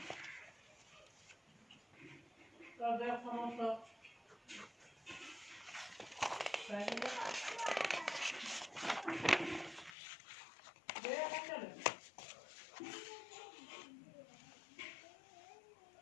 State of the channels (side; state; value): right; drops out; at 10.0 s